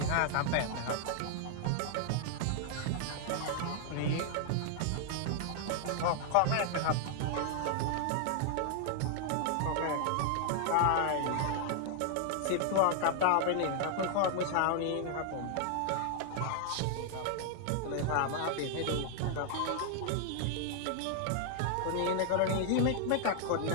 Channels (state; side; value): different; both; correlation 0.00